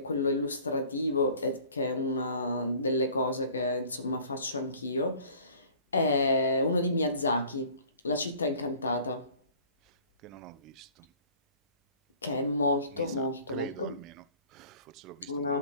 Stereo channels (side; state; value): both; inverted; correlation -0.51